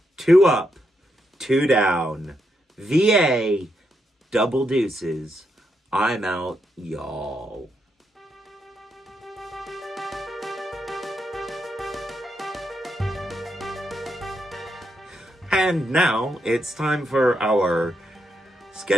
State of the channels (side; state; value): both; normal; correlation 0.81